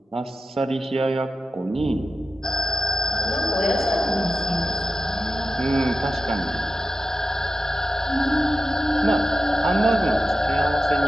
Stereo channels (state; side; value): normal; both; correlation 0.92